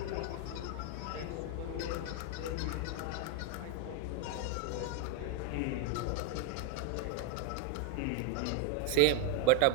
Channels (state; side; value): different; both; correlation 0.01